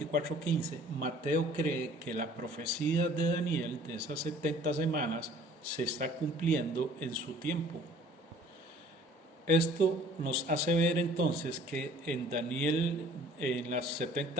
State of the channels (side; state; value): both; normal; correlation 0.52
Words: Mateo cree que la profecía de Daniel de esas 70 semanas se está cumpliendo en su tiempo. Esto nos hace ver entonces que en Daniel, en las